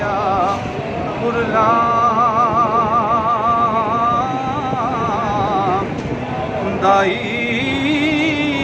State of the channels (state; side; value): identical; both; correlation 1.00